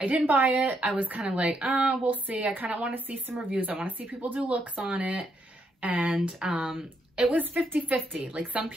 I didn't buy it. I was kind of like, oh, we'll see. I kind of want to see some reviews. I want to see people do looks on it. And it was 50-50. Like some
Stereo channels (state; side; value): normal; both; correlation 0.77